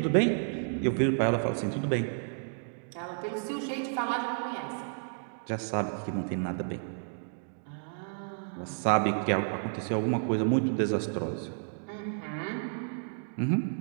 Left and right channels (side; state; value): left; silent; digital silence